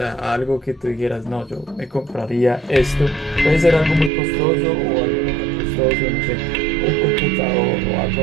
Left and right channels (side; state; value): left; drops out; at 4.1 s